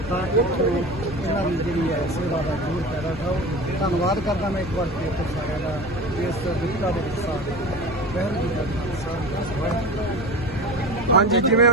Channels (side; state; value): left; noise; hum, 14 dB below the sound